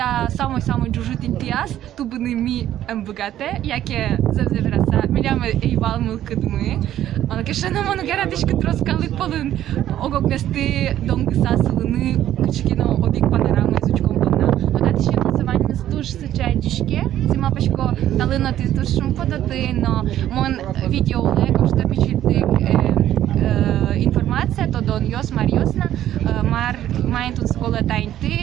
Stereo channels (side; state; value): left; quieter; 12.1 dB